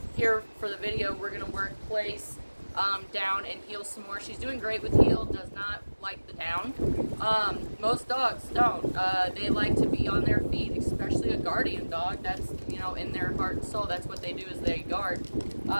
here for the video, we're going to work place, down, and heel some more. She's doing great with heel, does not like the down. Most dogs don't. They like to be on their feet, especially a guardian dog. That's, in their heart and soul, that's what they do, is they guard,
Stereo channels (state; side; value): inverted; both; correlation -1.00